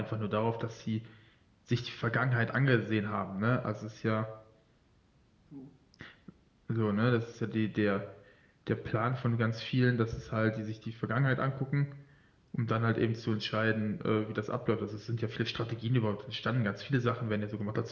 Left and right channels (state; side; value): identical; both; correlation 1.00